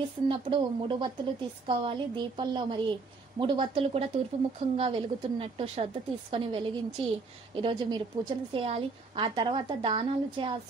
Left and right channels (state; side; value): quieter; left; 4.1 dB